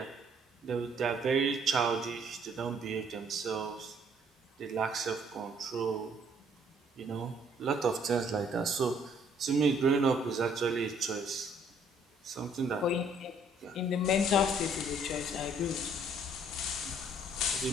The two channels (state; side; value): normal; both; correlation 0.62